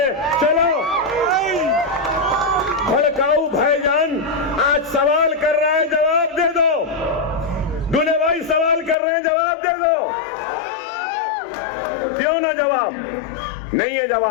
चलो भड़काऊ भाईजान आज सवाल कर रहा है, जवाब दे दो। दूल्हे भाई सवाल कर रहे हैं, जवाब दे दो। क्यों ना जवाब? नहीं है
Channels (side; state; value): right; drops out; at 9.0 s